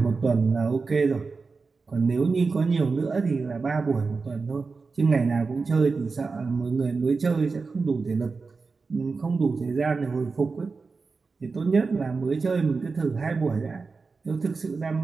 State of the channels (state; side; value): quieter; left; 4.4 dB